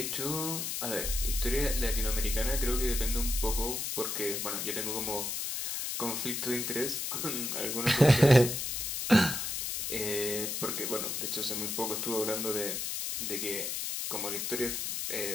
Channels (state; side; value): noise; left; hiss, 2 dB below the sound